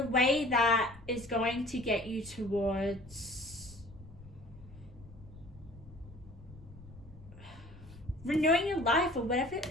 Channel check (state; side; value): noise; left; rumble, 19 dB below the sound